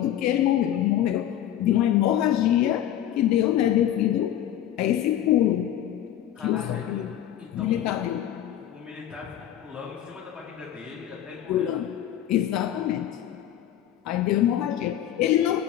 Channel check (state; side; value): quieter; right; 11.4 dB